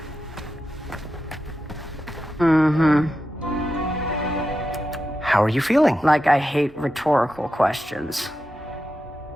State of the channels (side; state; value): both; normal; correlation 0.89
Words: How are you feeling? Like I hate rhetorical questions.